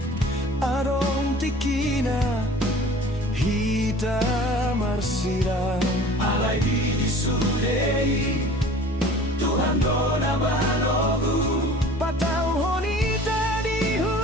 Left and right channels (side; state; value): both; normal; correlation 0.46